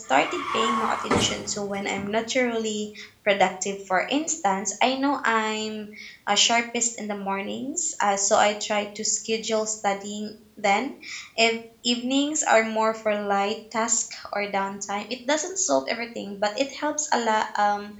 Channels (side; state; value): both; identical; correlation 1.00